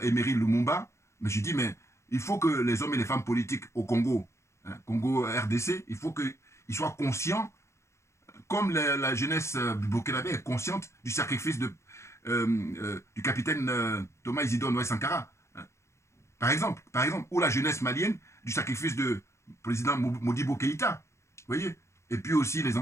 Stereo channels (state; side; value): late; right; 0.14 ms